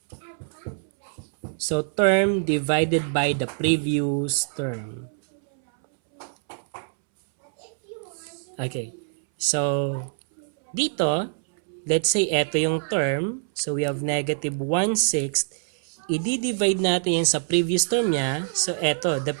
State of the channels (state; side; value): silent; left; 62 dB below the other